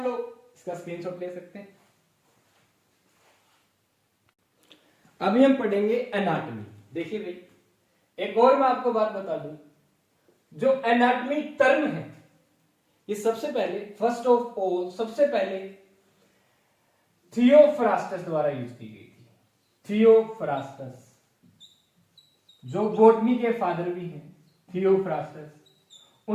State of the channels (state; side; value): identical; both; correlation 1.00